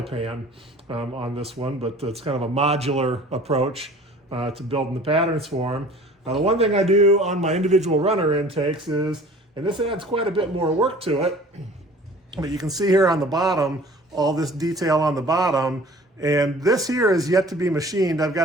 pan on this one, but it's kind of a modular approach to building the patterns for them. The one thing I do on my individual runner intakes is, and this adds quite a bit more work to it, but you can see here on the bottom, all this detail on the bottom, and this here is yet to be machined. I've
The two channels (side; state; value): both; normal; correlation 0.47